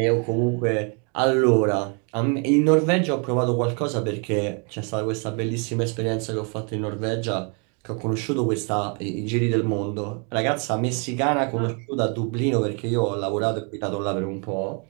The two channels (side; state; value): left; quieter; 36.6 dB